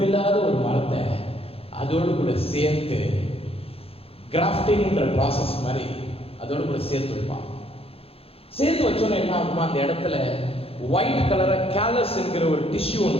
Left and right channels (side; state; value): right; late; 0.28 ms